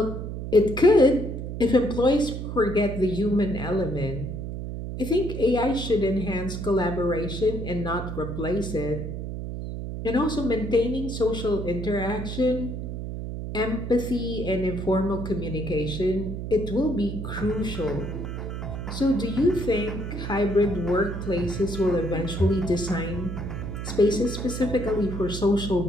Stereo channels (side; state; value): right; noise; hum, 6 dB below the sound